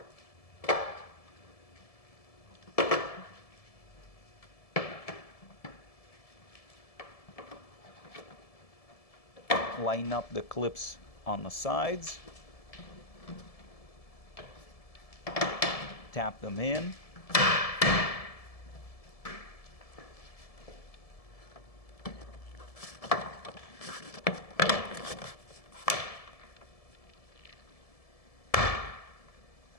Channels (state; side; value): late; right; 1.7 ms